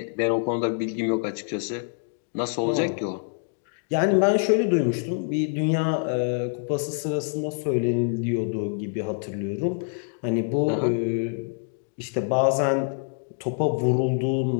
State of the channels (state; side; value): silent; right; digital silence